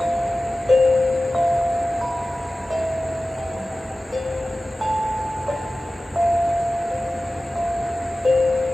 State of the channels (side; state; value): both; normal; correlation 0.96